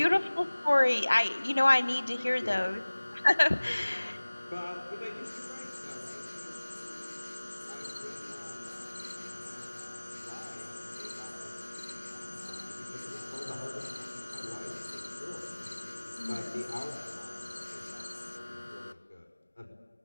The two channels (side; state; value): both; inverted; correlation -1.00